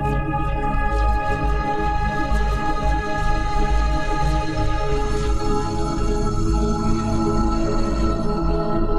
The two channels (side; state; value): both; identical; correlation 1.00